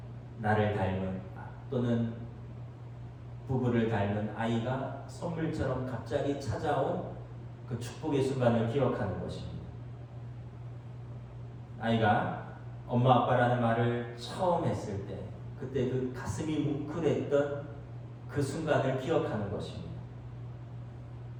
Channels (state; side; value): identical; both; correlation 1.00